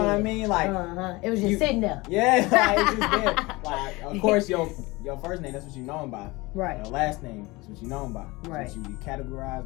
I mean? Like it was just sitting there. Yeah, like it's just there. Like of course your first name, that's what you know him by. Right. Your last name, that's what you know him by. Right. That's what you categorize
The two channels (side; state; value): right; quieter; 22.8 dB